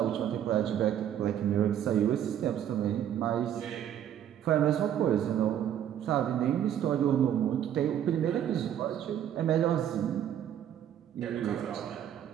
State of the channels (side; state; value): left; quieter; 10.2 dB